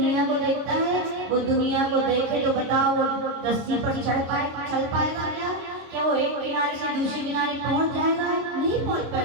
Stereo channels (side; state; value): left; late; 26 ms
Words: को देखता है? वो दुनिया को देखे तो बताओ वो रस्सी पर चल पाएगा क्या? क्या वो एक किनारे से दूसरे किनारे पहुंच जाएगा? नहीं पहुंच